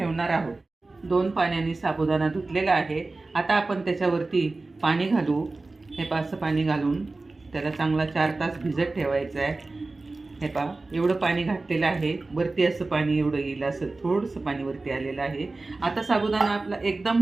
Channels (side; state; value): left; quieter; 3.4 dB